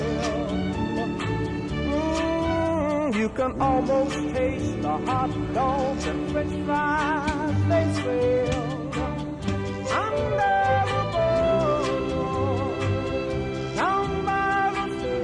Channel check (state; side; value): identical; both; correlation 1.00